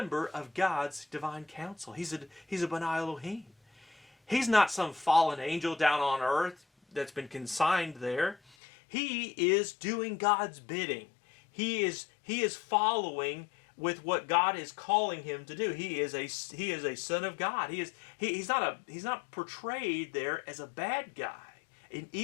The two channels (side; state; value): right; drops out; at 8.4 s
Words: of God's divine council. He's a B'nai Elohim. He's not some fallen angel down on earth that's been consigned there. He is doing God's bidding. He is following with what God is calling him to do. He is a son of God. He's not portrayed there as a bad guy, an